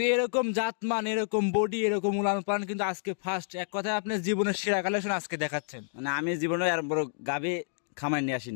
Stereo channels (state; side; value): silent; right; digital silence